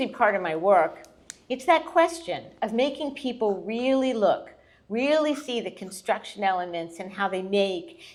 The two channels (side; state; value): both; identical; correlation 1.00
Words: be part of my work. It's that question of making people really look, really see the construction elements and how they make